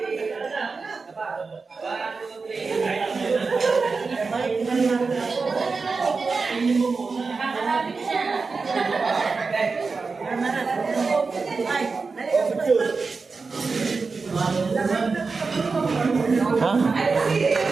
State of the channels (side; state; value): left; quieter; 4.4 dB